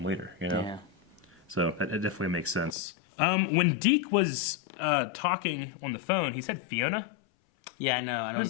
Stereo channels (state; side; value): drops out; right; at 2.8 s